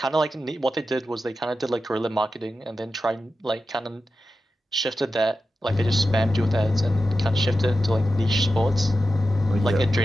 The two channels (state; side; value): normal; both; correlation 0.92